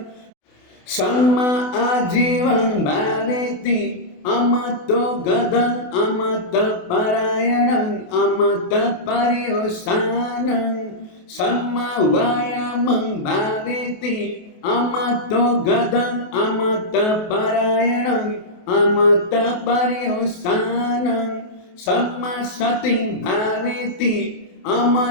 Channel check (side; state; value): right; late; 28 ms